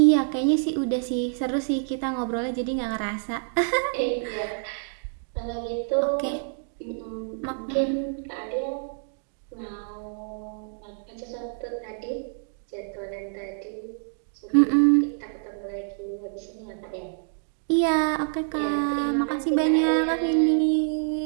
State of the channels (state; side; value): silent; left; digital silence